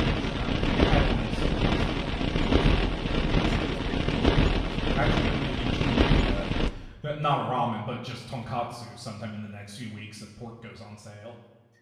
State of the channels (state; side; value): identical; both; correlation 1.00